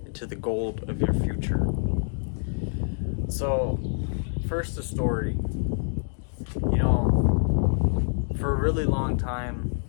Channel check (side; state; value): right; silent; digital silence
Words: into the gold of your future. So, first the story. For a really long time,